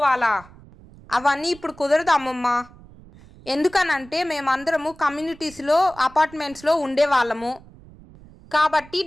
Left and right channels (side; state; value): right; noise; rumble, 22 dB below the sound